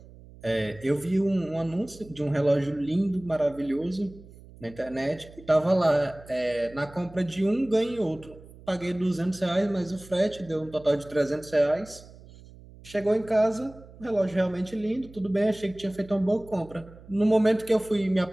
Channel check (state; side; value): noise; right; hum, 20 dB below the sound